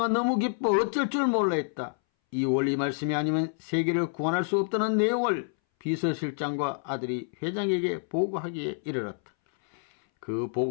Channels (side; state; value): right; silent; 59 dB below the other